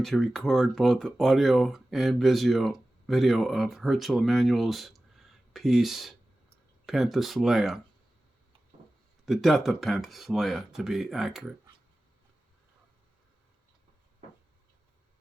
to record both audio and video of Herzl Emanual's piece, Penthesileia, the Death of Penthesileia, to be accurate. In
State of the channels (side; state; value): both; normal; correlation 0.96